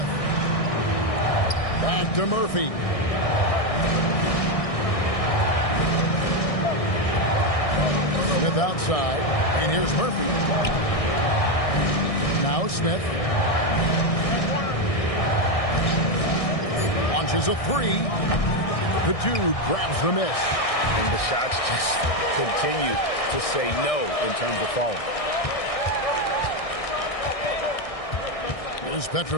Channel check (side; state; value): right; late; 1.6 ms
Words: Back to Murphy. Smith outside. And here's Murphy. Now Smith. Launches a three. The dude grabs the miss. And the shots just continue to say no in terms of falling. Here's